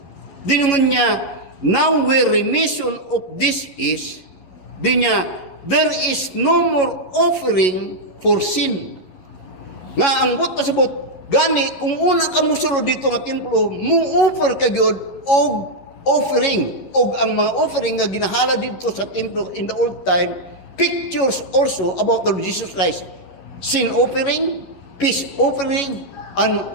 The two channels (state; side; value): late; right; 11 ms